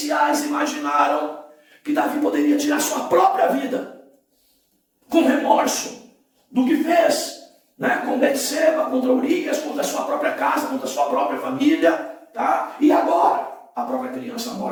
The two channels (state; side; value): identical; both; correlation 1.00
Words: imaginaram que Davi poderia tirar sua própria vida, com remorso do que fez, com Betseba, contra Urias, contra a sua própria casa, contra a sua própria família, tá? E agora, a própria criança